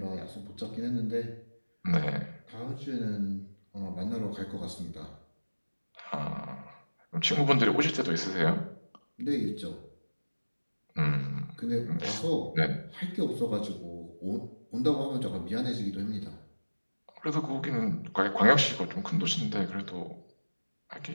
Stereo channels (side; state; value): both; inverted; correlation -1.00